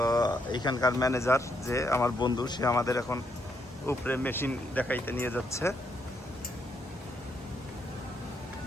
এখানকার ম্যানেজার যে আমার বন্ধু, সে আমাদের এখন উপরে মেশিন দেখাইতে নিয়ে যাচ্ছে।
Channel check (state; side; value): normal; both; correlation 0.75